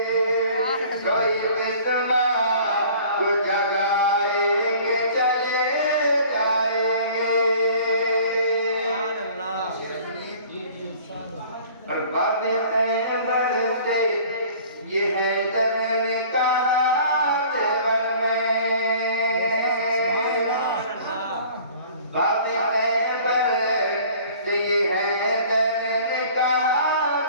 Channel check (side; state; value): both; inverted; correlation -0.49